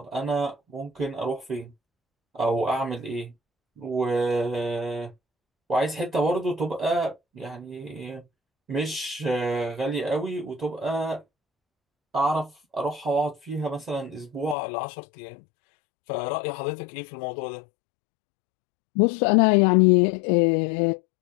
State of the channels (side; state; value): right; drops out; at 14.6 s